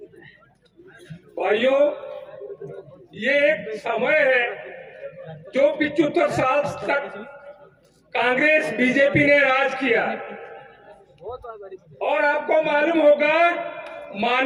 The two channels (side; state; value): both; identical; correlation 1.00